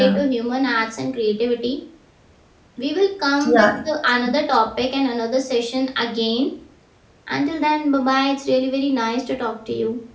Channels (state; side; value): identical; both; correlation 1.00